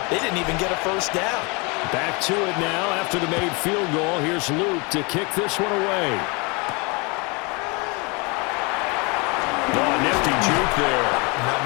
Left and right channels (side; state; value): right; quieter; 29.5 dB